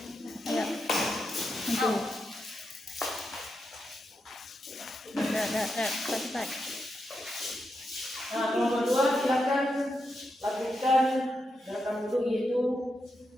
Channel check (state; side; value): normal; both; correlation 0.85